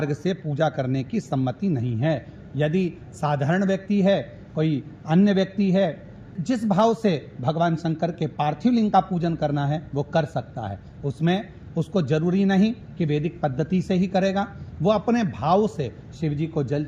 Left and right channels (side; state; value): both; identical; correlation 1.00